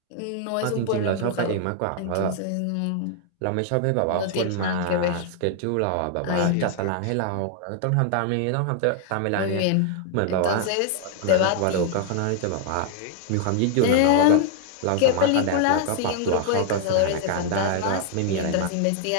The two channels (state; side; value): different; both; correlation 0.00